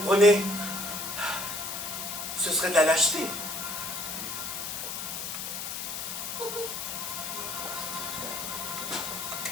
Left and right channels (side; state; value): left; noise; hiss, 5 dB below the sound